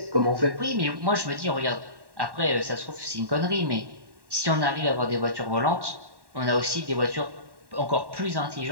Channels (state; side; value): late; left; 1.1 ms